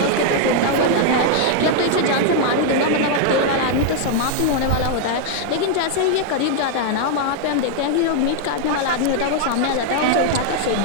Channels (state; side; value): different; both; correlation 0.00